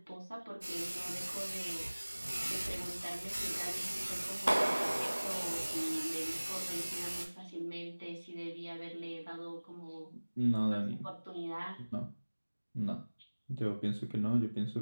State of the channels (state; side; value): inverted; both; correlation -1.00